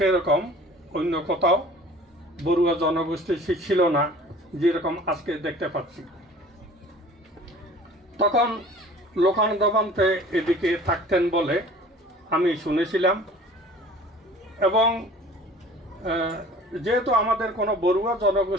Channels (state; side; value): normal; both; correlation 0.47